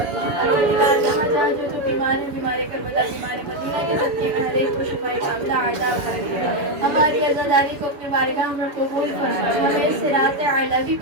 جہاں جہاں جو بیمار ہے بیمار کربلا بیمار مدینہ کے صدقے میں ہر ایک کو شفائے کاملہ عطا فرما. ہماری عزاداری کو اپنے بارگاہ میں قبول فرما. ہمیں صراط اعلیٰ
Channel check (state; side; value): late; left; 6.9 ms